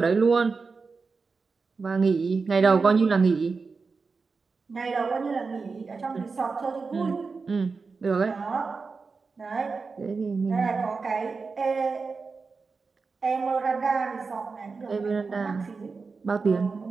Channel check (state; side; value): quieter; left; 4.5 dB